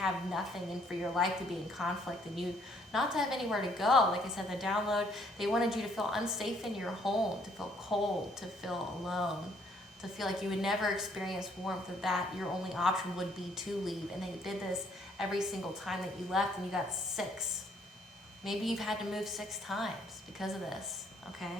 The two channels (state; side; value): normal; both; correlation 0.65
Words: nothing and for your life to be in conflict and you not to have anywhere to go. Like I said, the download, they wanted you to feel unsafe in your home, to feel cold, to feel alone, to feel like you would never experience warmth, that your only option would be to leave. And they did this every single time that you left, and you got 6. Maybe you've had to move 6 times because of this,